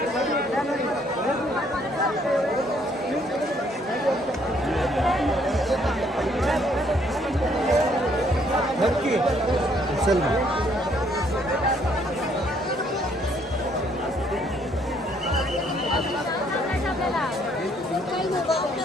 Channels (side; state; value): both; normal; correlation 0.66